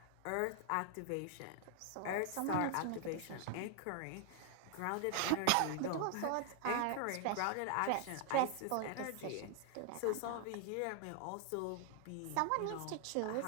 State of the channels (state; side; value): different; both; correlation 0.00